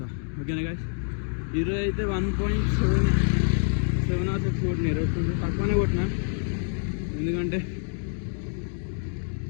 ఓకేనా గైస్? ఈరోజు అయితే 1.7 or 6 కొట్టిన. ఈరోజు కొంచెం తక్కువనే కొట్టిన, ఎందుకంటే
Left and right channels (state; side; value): silent; right; digital silence